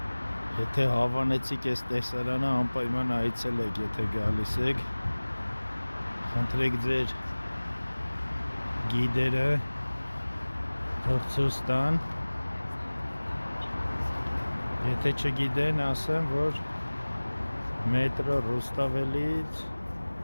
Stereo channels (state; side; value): inverted; both; correlation -1.00